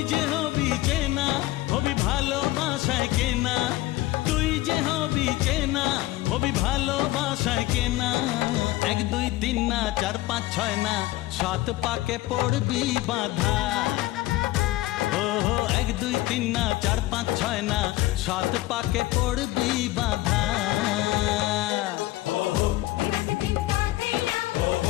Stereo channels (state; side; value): quieter; right; 17.5 dB